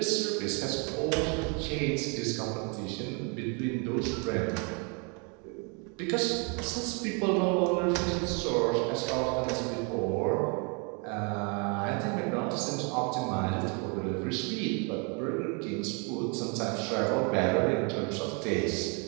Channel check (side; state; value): left; quieter; 34.6 dB